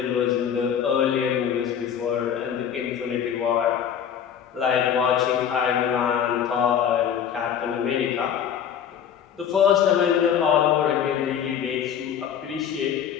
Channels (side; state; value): right; quieter; 8.6 dB